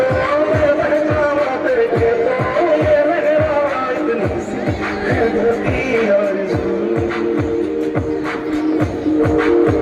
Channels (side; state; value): both; identical; correlation 1.00